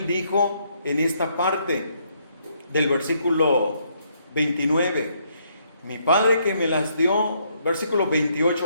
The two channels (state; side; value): inverted; both; correlation -0.72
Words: dijo en esta parte del versículo 29, mi Padre que me las dio, versículo